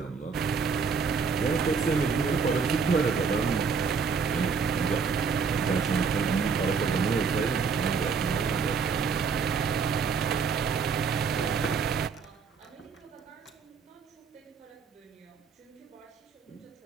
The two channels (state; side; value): quieter; left; 5.6 dB